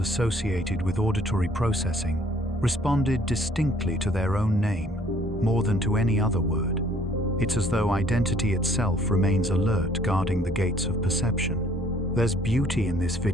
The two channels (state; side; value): normal; both; correlation 0.59